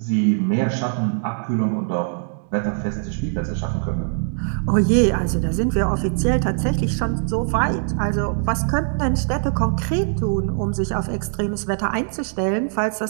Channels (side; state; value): left; silent; 64 dB below the other